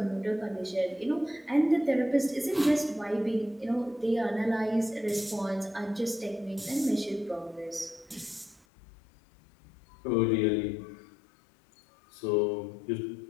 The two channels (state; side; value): drops out; right; at 8.7 s